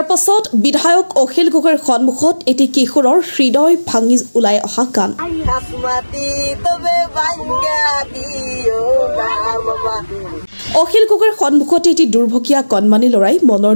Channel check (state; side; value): inverted; both; correlation -1.00